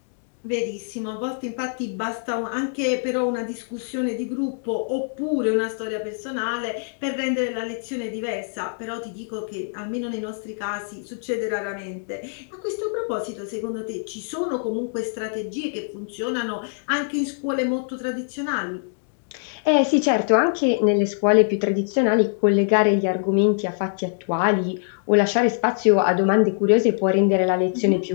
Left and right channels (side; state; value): right; silent; digital silence